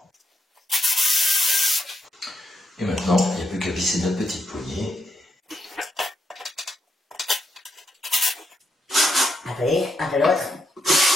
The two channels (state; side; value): normal; both; correlation 0.79